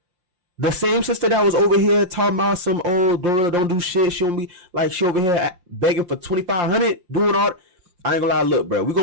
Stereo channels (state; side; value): late; left; 5.7 ms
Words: The same sister that was over here talking about some old Glorilla don't do shit. She don't be like, she over here begging for $2,500, doing all. I ain't gonna lie, look, bro. We're